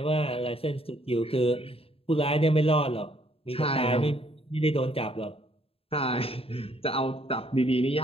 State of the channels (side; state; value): right; late; 0.27 ms